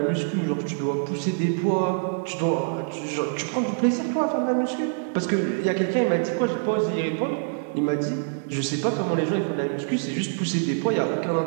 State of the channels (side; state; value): left; silent; digital silence